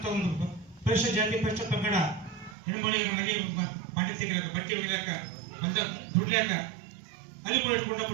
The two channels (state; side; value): drops out; left; at 2.6 s